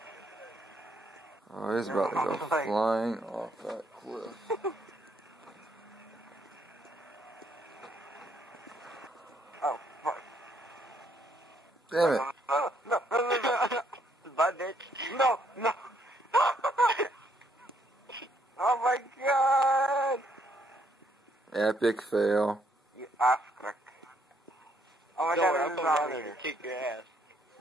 Oh, he's about to go flying off that cliff. Oh, fuck. Damn it. No. Bye, bitch. No, no. Oh my god. Epic fail. You ass crack. Oh my Don't god, worry, I'll there's come a down zombie there here. and kick your ass.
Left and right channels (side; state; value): both; normal; correlation 0.70